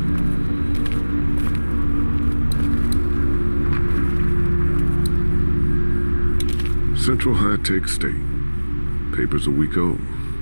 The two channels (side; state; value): both; inverted; correlation -1.00